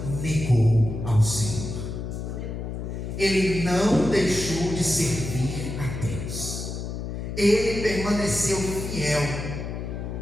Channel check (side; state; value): left; noise; hum, 6 dB below the sound